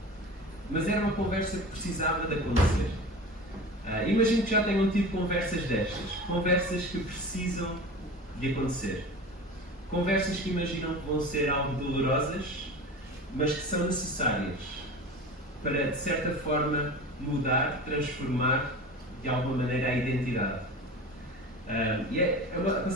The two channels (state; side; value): normal; both; correlation 0.33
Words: Mas era uma conversa que precisava de acontecer. Imagino que já tenham tido conversas destas. Conversas que precisam de acontecer. Conversas que imaginam que vão ser algo dolorosas, mas que são necessárias para, de certa forma, mudar, transformar de alguma maneira a identidade. E a